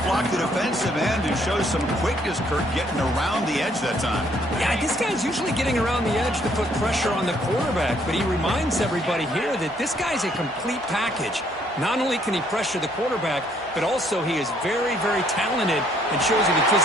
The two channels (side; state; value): both; normal; correlation 0.66